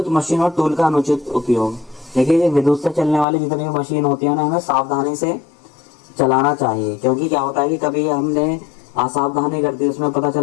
मशीन और टूल का अनुचित उपयोग, देखिए विद्युत से चलने वाली जितनी भी मशीन होती है ना, हमें सावधानी से चलाना चाहिए, क्योंकि क्या होता है कि कभी हमने असावधानी कर दी, उसमें पता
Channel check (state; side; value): drops out; right; at 3.2 s